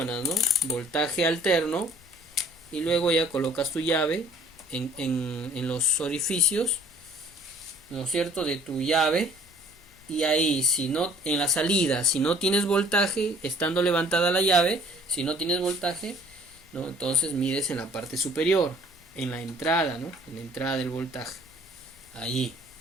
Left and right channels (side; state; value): both; normal; correlation 0.55